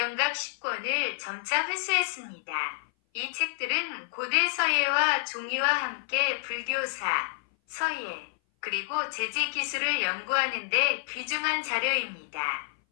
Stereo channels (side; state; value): right; silent; 57 dB below the other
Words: 10권을 점차 회수했습니다. 이 책들은 고대 서예와 종이와 함께 불교사, 서예, 그리고 제지 기술을 연구하는 데 귀중한 자료입니다.